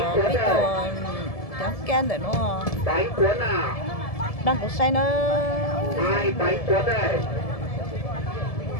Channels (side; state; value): right; late; 1.7 ms